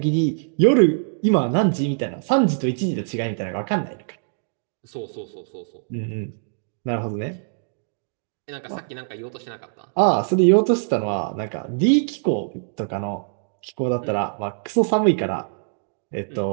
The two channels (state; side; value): silent; left; digital silence